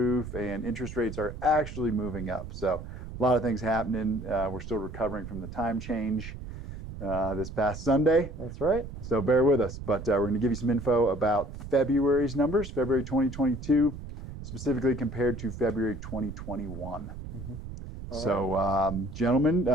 and interest rates are actually moving up. So a lot of things happening. We're still recovering from the time change this past Sunday. That's right. So bear with us. But we're going to give you some info about February's numbers, February 2022, specifically compared to February 2021. Mm-hmm. So, gentlemen,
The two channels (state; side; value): noise; right; rumble, 10 dB below the sound